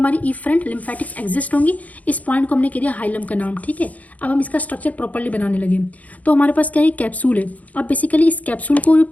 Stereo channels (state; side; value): late; right; 0.074 ms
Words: ईफ्रेंट लिम्फेटिक्स एग्जिस्ट होंगी। इस पॉइंट को हमने कह दिया हाइलम का नाम। ठीक है, अब हम इसका स्ट्रक्चर प्रॉपर्ली बनाने लगे। तो हमारे पास क्या है, कैप्सूल है। अब बेसिकली इस कैप्सूल को जो